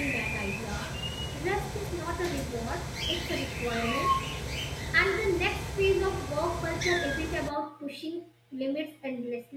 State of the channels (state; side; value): identical; both; correlation 1.00